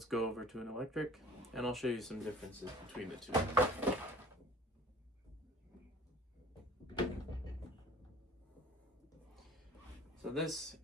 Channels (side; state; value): both; normal; correlation 0.48